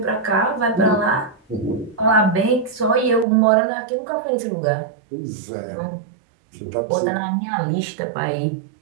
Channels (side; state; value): left; drops out; at 3.2 s